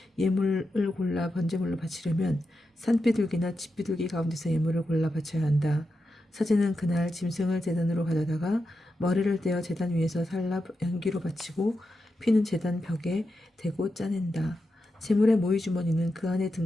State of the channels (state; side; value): normal; both; correlation 0.88